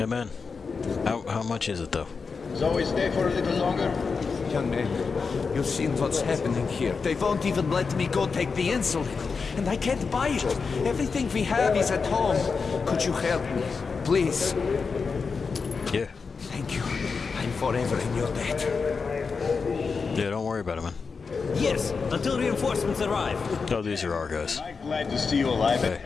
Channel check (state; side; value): quieter; right; 5.0 dB